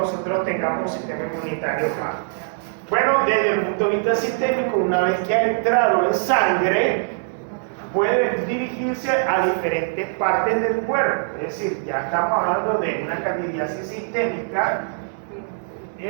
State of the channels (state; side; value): silent; left; 62 dB below the other